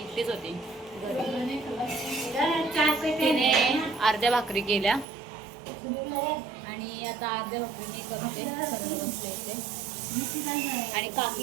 होती घरी. तिने अर्ध्या भाकरी केल्या आणि आता अर्ध्या भाकरी मी करते, करायला बसले इथे. आणि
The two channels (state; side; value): drops out; left; at 5.1 s